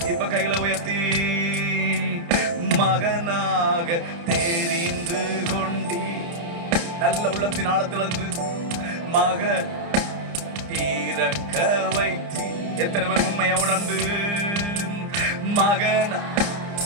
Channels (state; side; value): late; left; 29 ms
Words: இப்ப கைகளை உயர்த்தி, மகனாக தெரிந்து கொண்டீ, நல்ல உள்ளத்தின் ஆழத்திலிருந்து மக தீரக்க வைத்தி. எத்தனை பேர் உண்மையா உணர்ந்து மகன்